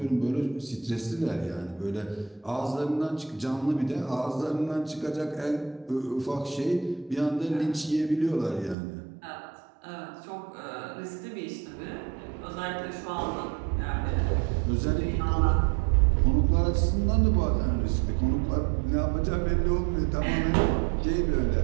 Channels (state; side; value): drops out; left; at 8.8 s